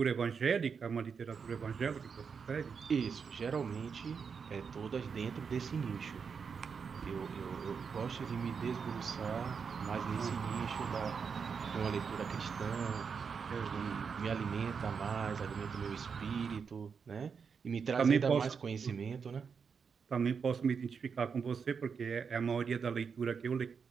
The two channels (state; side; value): quieter; left; 6.0 dB